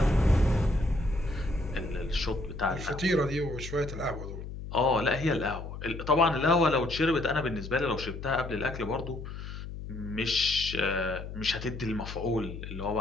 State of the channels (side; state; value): left; noise; hum, 9 dB below the sound